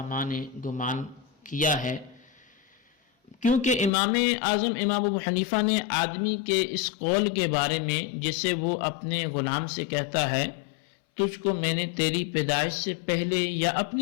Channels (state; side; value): drops out; right; at 3.9 s